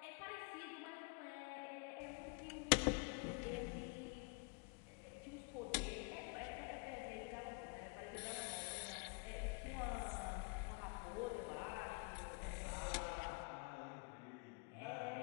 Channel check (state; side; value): quieter; right; 33.2 dB